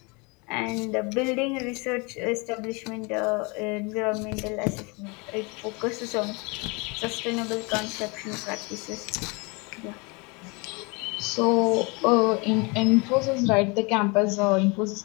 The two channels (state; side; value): quieter; right; 29.2 dB